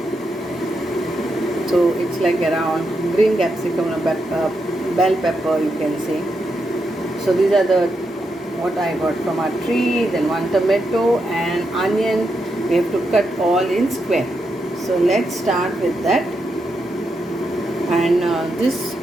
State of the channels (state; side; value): normal; both; correlation 0.84